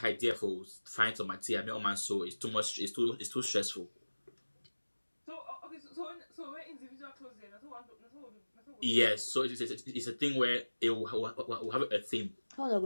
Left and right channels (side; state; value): both; inverted; correlation -1.00